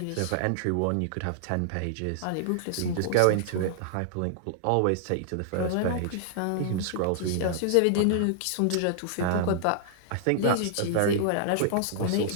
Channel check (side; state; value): both; different; correlation -0.01